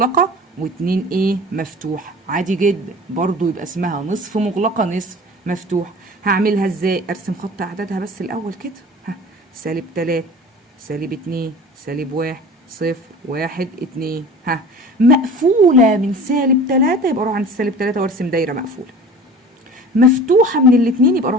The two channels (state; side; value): normal; both; correlation 0.41